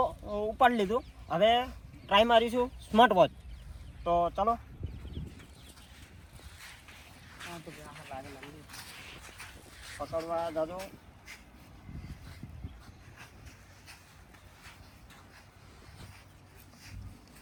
ઉપાડી લીધું, હવે ટ્રાય મારીશું સ્માર્ટ વોચ. તો ચાલો પકડવા દાદો.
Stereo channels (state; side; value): identical; both; correlation 1.00